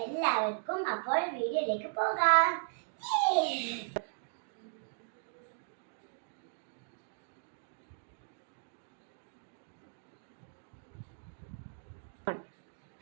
എല്ലാവർക്കും. അപ്പോൾ വീഡിയോയിലേക്ക് പോകാം.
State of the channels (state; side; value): silent; left; digital silence